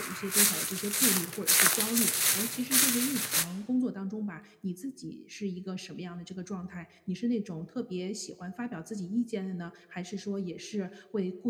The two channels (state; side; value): identical; both; correlation 1.00